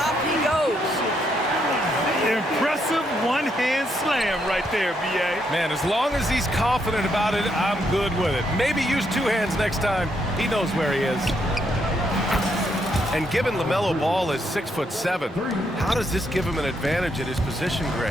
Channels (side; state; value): both; normal; correlation 0.76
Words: he goes. Impressive one-hand slam right there, B.A. Man, as long as he's confident about it, I'm good with it. Maybe use two hands next time. He knows where he is. And given LaMelo Ball is 6'7", how does this give him an advantage at his position,